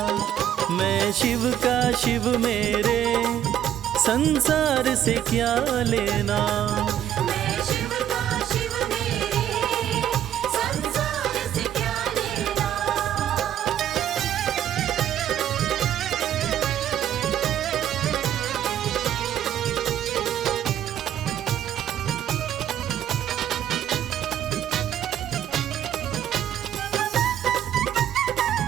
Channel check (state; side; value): quieter; left; 10.7 dB